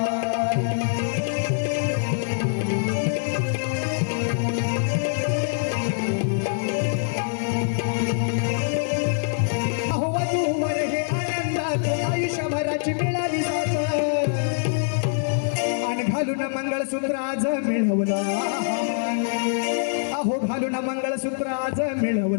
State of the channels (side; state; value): right; silent; digital silence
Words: आयुष्यभराची मिळाली साथ आणि घालून मंगळसूत्र आज मिळवला, अहो घालून मंगळसूत्र आज